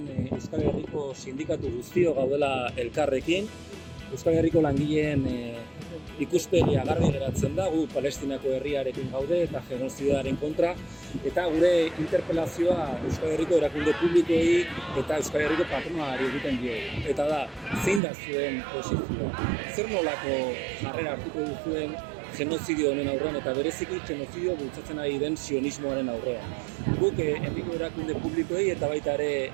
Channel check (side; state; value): left; drops out; at 18.0 s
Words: Euskal Herriko sindikatu guztio gaudela elkarrekin. Euskal Herriko langileen ikuspegia garbi geratzen da, gu Palestinako herriarekin gaude eta genozidoaren kontra, eta gure interpelazioa Euskal Herriko erakunde publikoei eta Euskal Herriko patronalari egiten diogu. Eta da, zein da zuen posizioa? Zer nolako jarrera hartuko duzuen genozidio honen aurrean eta bereziki genozidio bultzatzen ari den sionismoaren aurrean. Guk herriko erakunde publikoei eta baita ere